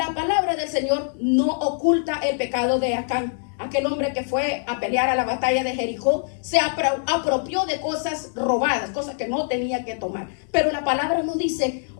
palabra del Señor no oculta el pecado de Acán. Aquel hombre que fue a pelear a la batalla de Jericó se apropió de cosas robadas, cosas que no tenía que tomar. Pero la palabra no dice:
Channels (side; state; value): right; silent; 63 dB below the other